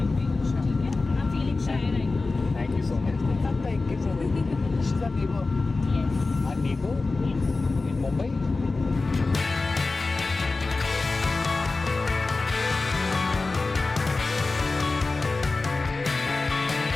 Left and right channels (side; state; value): right; quieter; 3.6 dB